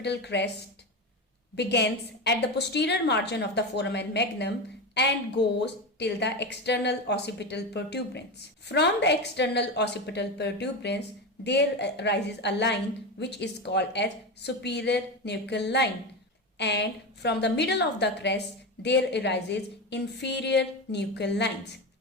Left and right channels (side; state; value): both; normal; correlation 0.19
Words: crest begins at the posterior margin of the foramen magnum and goes till the external occipital protuberance. From the external occipital protuberance, there arises a line which is called as superior nuchal line, and from the middle of the crest there arises inferior nuchal lines.